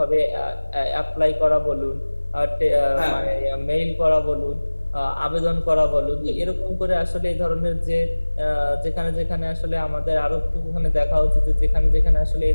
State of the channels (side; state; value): both; inverted; correlation -1.00